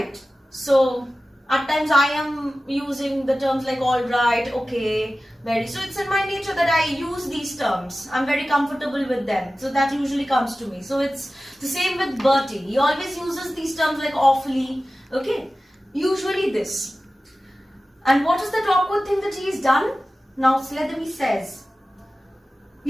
So, at times I am using the terms like alright, okay, very. So it's in my nature that I use these terms. I'm very comfortable with them. So that usually comes to me. So it's the same with Bertie. He always uses these terms like awfully, okay. Usually this. And what is that awkward thing that he's done? Now Sletherby says,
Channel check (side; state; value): both; normal; correlation 0.95